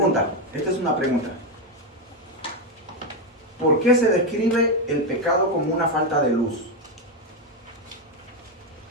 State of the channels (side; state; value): both; normal; correlation 0.07